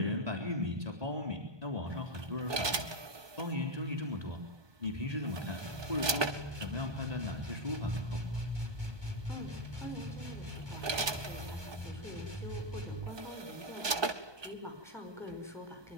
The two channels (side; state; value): left; late; 1.2 ms